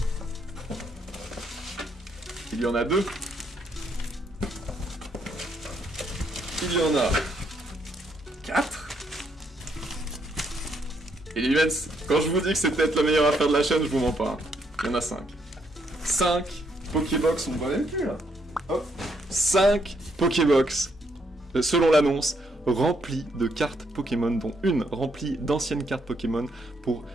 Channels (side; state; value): both; normal; correlation 0.74